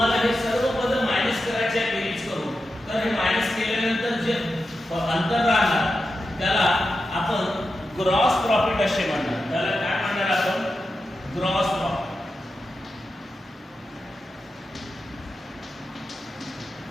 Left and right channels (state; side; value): normal; both; correlation 0.90